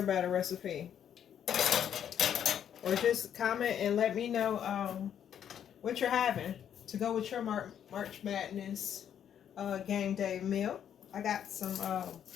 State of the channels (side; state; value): right; quieter; 9.2 dB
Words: batter recipe. Or just comment and let me know what you're having to go with your March Madness game day meal. I got some,